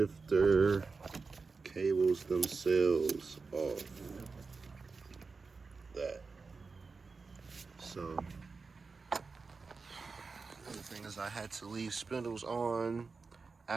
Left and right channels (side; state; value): left; quieter; 4.4 dB